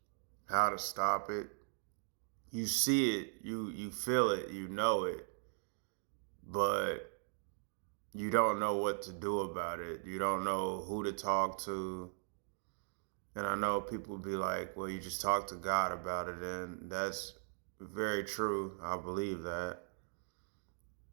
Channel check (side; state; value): left; silent; digital silence